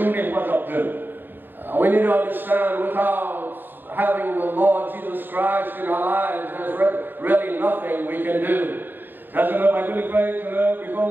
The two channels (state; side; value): late; left; 0.093 ms